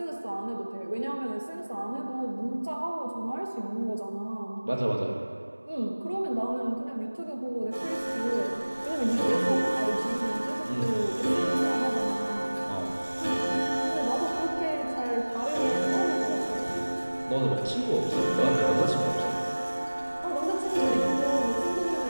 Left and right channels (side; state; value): both; inverted; correlation -1.00